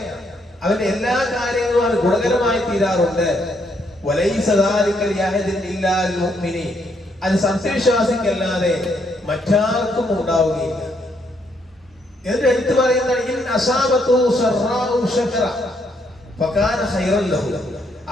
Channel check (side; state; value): both; normal; correlation 0.73